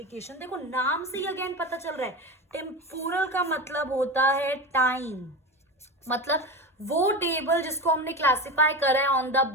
देखो नाम से ही अगेन पता चल रहा है टेम्पोरल का मतलब होता है टाइम. मतलब वो टेबल जिसको हमने क्लासिफाई करा है on the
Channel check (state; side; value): normal; both; correlation 0.23